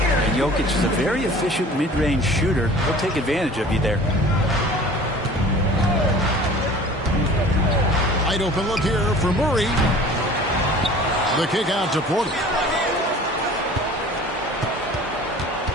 And Jokic is a very efficient mid-range shooter. He'll take advantage of you there. Wide open look here for Murray. The kick out to Porter.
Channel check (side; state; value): both; normal; correlation 0.45